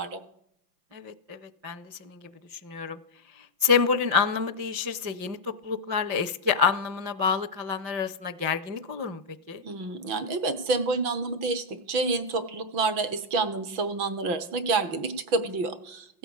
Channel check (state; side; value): late; left; 5.8 ms